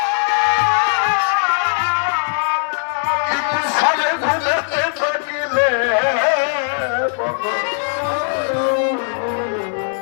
সারে ঘুমাতে থাকিলে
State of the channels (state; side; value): silent; right; digital silence